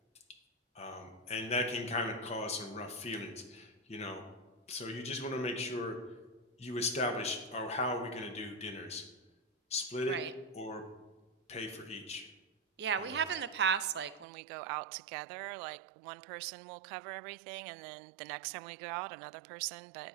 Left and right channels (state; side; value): drops out; left; at 14.2 s